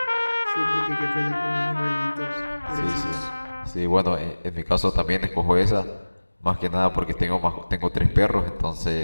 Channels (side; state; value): both; inverted; correlation -1.00